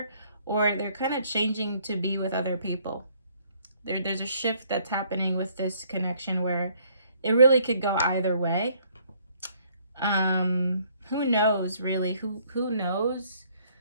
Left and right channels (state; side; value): inverted; both; correlation -0.64